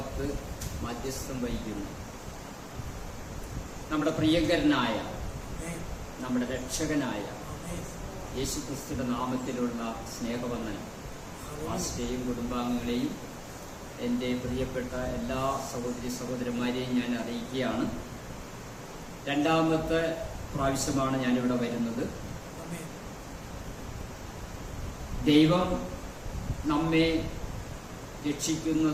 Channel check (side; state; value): both; identical; correlation 1.00